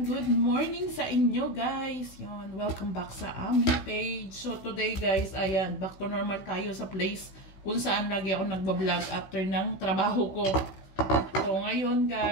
good morning sa inyo guys. Yon, welcome back sa aming page. So today guys, ayan, back to normal tayo sa place kung saan lagi ako nagbablog after ng trabaho ko. So ngayon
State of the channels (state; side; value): late; right; 16 ms